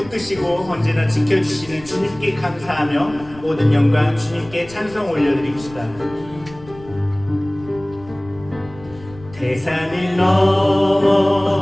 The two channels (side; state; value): left; noise; rumble, 20 dB below the sound